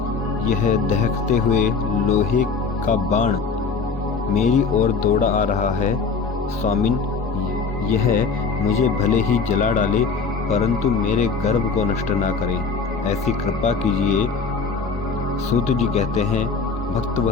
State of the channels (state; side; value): quieter; right; 4.8 dB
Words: यह दहकते हुए लोहे का बाण मेरी ओर दौड़ा आ रहा है। स्वामिन, यह मुझे भले ही जला डाले परंतु मेरे गर्भ को नष्ट ना करे, ऐसी कृपा कीजिए। सूत जी कहते हैं,